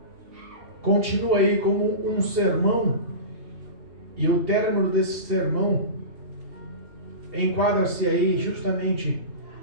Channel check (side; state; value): left; late; 3.2 ms